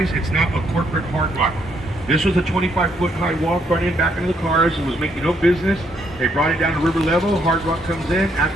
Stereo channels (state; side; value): normal; both; correlation 0.72